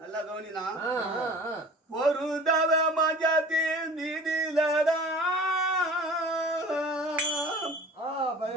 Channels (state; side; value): normal; both; correlation 0.42